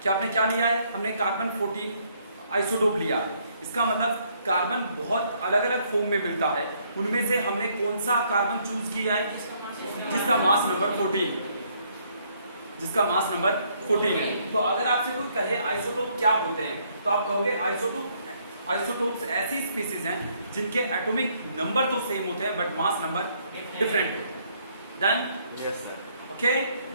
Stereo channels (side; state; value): both; inverted; correlation -0.68